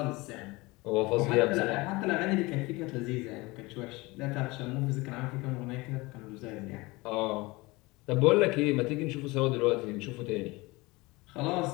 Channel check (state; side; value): quieter; right; 23.0 dB